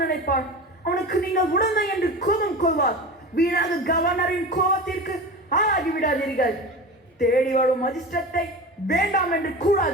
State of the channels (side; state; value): both; normal; correlation 0.30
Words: நினைப்பார். அவனுக்கு நீங்கள் உடனே என்று கோபம் கொள்வார். வீணாக கவர்னரின் கோபத்திற்கு ஆளாகி விடாதீர்கள். தேடி வரும் அதிர்ஷ்டத்தை வேண்டாம் என்று